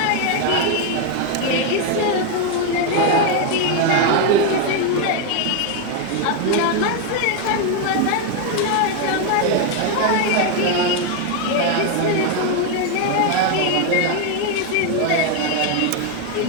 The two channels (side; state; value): both; different; correlation 0.01